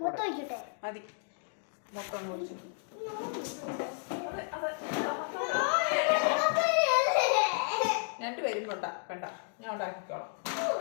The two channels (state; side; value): silent; right; 55 dB below the other